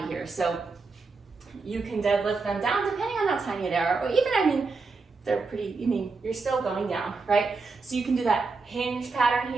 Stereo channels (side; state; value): left; quieter; 4.2 dB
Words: here. So you can deadlift them down depending on how tiny they are, or even, they're pretty, you're still going down, right? So you can do that hinge pattern